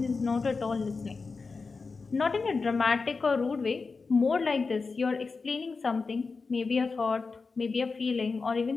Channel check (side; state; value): right; quieter; 4.4 dB